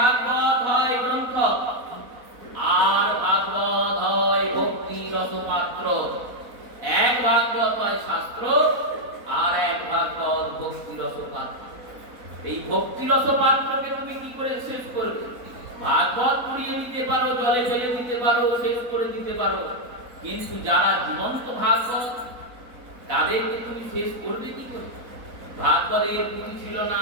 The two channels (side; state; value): left; late; 4.0 ms